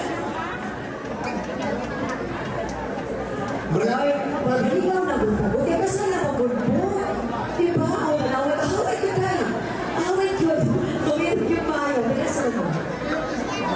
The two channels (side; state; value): both; identical; correlation 1.00